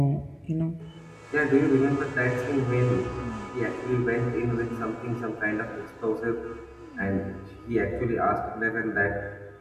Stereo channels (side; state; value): both; identical; correlation 1.00